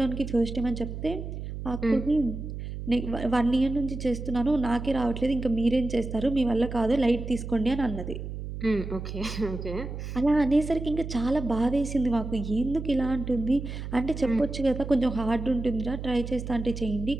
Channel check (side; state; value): right; noise; hum, 7 dB below the sound